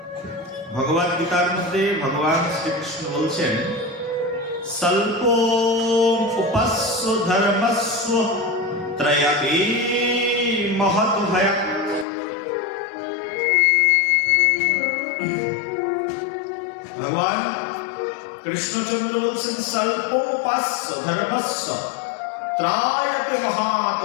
ভগবদ গীতার মধ্যে ভগবান শ্রীকৃষ্ণ বলছেন, স্বল্প উপাস্য ধর্মস্ব ত্রয়াপি মহৎ ভয়াৎ। ভগবান কৃষ্ণচন্দ্র বলছেন, স্বল্প উপাস্য ধর্মস্য ত্রয়াপি মহৎ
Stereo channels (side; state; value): right; drops out; at 12.1 s